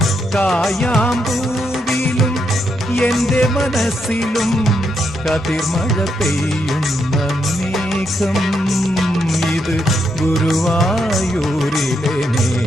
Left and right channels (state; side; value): normal; both; correlation 0.79